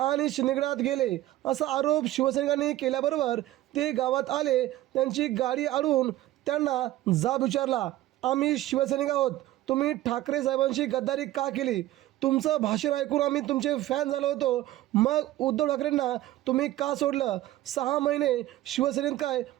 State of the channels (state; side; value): quieter; left; 15.3 dB